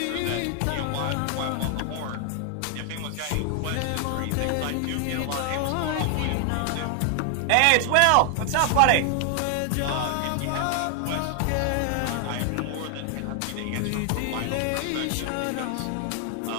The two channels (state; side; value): different; both; correlation 0.00